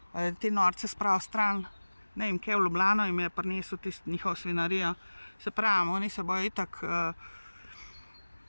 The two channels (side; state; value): both; inverted; correlation -1.00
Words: te norce spravil stran, ne vem, kaj v Ljubljano jim je prinesel tisto njihov svinarijo. Se pravim, oni se bojo itak